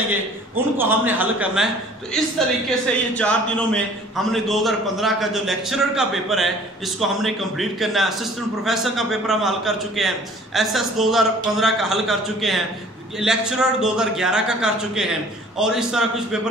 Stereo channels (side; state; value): both; normal; correlation 0.51